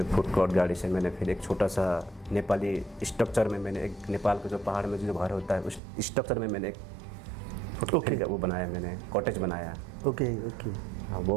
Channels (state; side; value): drops out; left; at 5.8 s